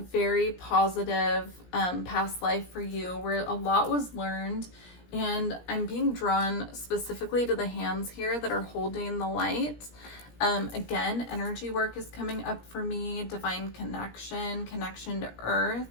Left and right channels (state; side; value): late; right; 17 ms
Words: positive past life for you where a lot was learned, and I'm being drawn specifically to the hands here that are holding the light. Again, energy work is coming up for me, divine connection to earth.